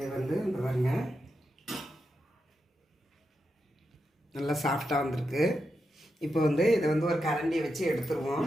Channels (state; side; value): normal; both; correlation 0.87